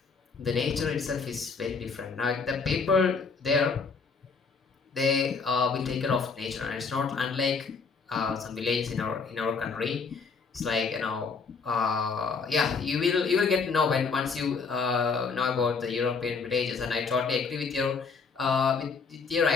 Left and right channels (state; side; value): quieter; right; 5.0 dB